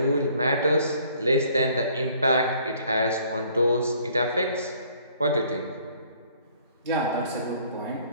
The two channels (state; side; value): inverted; both; correlation -0.59